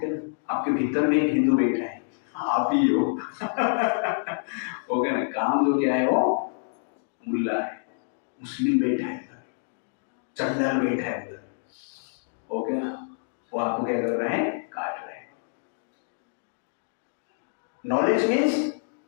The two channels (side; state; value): right; silent; digital silence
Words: ना, आपके भीतर में एक हिंदू बैठा है, आप ही हो। ओके ना, काम जो क्या है वो मुल्ला है, मुस्लिम बैठा है उधर, चंडाल बैठा है उधर। ओके ना, वो आपको क्या कर रहे हैं, काट रहे हैं। Knowledge means